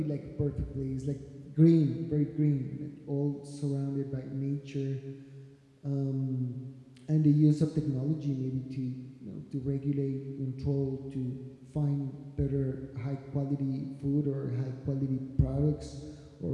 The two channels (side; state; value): both; identical; correlation 1.00